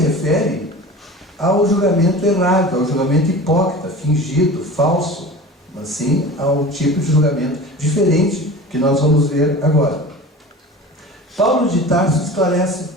ao julgamento errado, ao julgamento hipócrita, fingido, falso, mas sim ao tipo de julgamento diferente que nós vamos ver agora. Paulo de Tarso esclarece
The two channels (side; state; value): both; normal; correlation 0.36